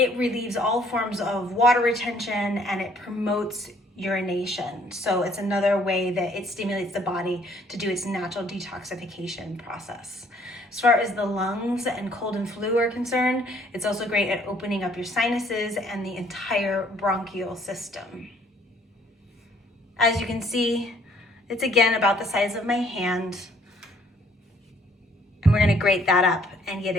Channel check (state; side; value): normal; both; correlation 0.62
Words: relieves all forms of water retention, and it promotes urination. So it's another way that it stimulates the body to do its natural detoxification process. As far as the lungs and cold and flu are concerned, it's also great at opening up your sinuses and the entire bronchial system. As you can see, it's again about the size of my hand, and we're going to grate that up and get